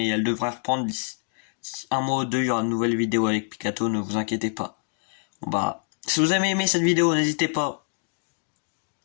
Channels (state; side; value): silent; right; 61 dB below the other